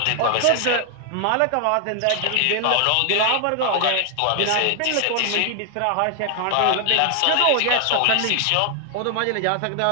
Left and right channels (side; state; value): both; different; correlation 0.00